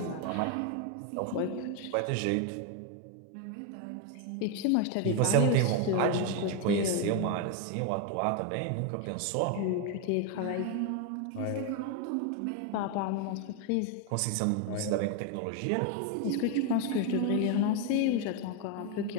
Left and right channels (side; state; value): both; different; correlation 0.01